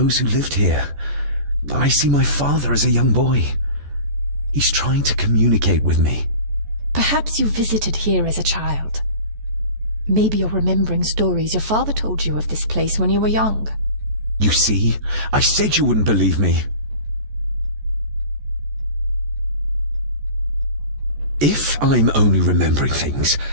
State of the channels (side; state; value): left; late; 14 ms